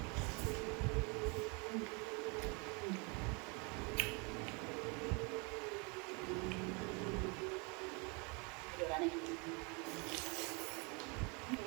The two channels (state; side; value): quieter; left; 31.5 dB